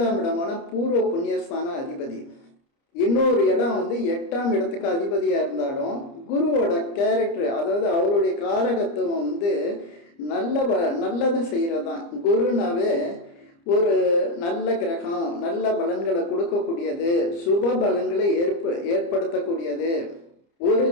இடமான பூர்வ புண்ணியஸ்தான அதிபதி. இன்னொரு இடம் 8ஆம் இடத்துக்கு அதிபதியாக இருந்தாலும் குருவோட கேரக்டர், அதாவது அவருடைய காரகத்துவம் நல்லது செய்கிறது தான். குருனாவே ஒரு நல்ல கிரகம், நல்ல பலன்களை கொடுக்கக்கூடியது, சுப பலன்களை ஏற்படுத்தக்கூடியது. ஒரு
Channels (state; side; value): late; right; 30 ms